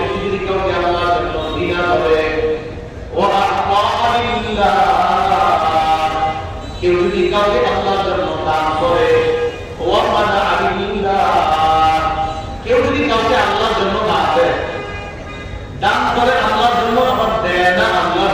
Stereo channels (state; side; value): identical; both; correlation 1.00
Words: যদি কাউকে আল্লাহর জন্য ঘৃণা করে, ওয়া আহবা লিল্লাহ, কেউ যদি কাউকে আল্লাহর জন্য দান করে, ওয়া মানা লিল্লাহ, কেউ যদি কাউকে আল্লাহর জন্য না দেয়, দান করে আল্লাহর জন্য আবার দেয় না আল্লাহর